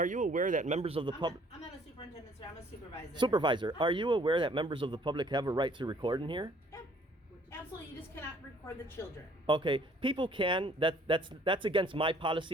you aware that members of the public. I'm not a superintendent, sir. I'm a supervisor. Supervisor, are you aware that members of the public have a right to record in here? Yeah, absolutely. You just cannot record the children. Okay, people can. That's against my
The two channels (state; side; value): normal; both; correlation 0.59